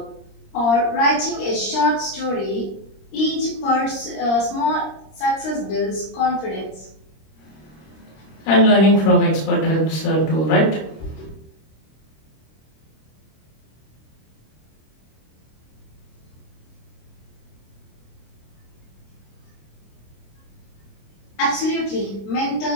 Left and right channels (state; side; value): late; right; 26 ms